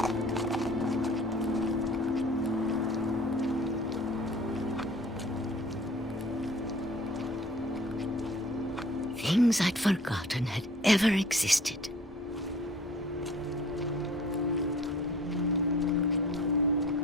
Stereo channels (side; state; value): both; normal; correlation 0.49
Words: Things I'd forgotten had ever existed.